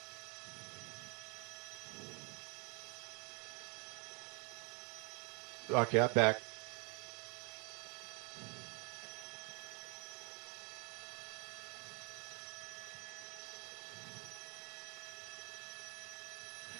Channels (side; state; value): left; quieter; 35.0 dB